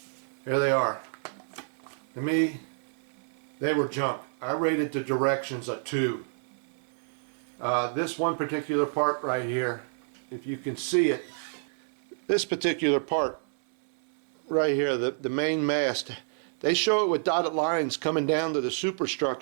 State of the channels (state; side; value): silent; left; 58 dB below the other